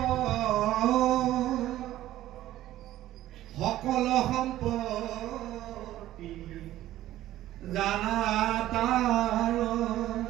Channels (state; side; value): quieter; left; 14.2 dB